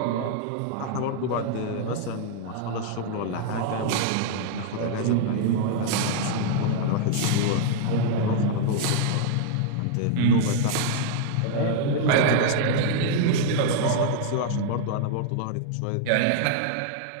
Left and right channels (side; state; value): both; different; correlation -0.01